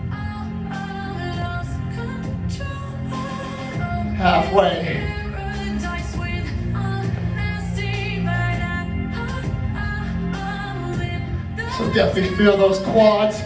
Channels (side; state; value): both; identical; correlation 1.00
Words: Halfway. So definitely feel those quads.